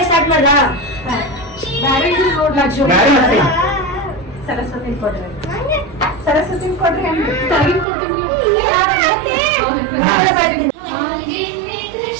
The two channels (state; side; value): drops out; left; at 7.9 s